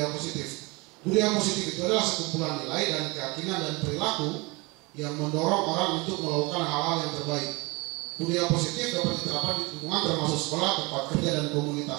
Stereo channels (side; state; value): left; quieter; 26.0 dB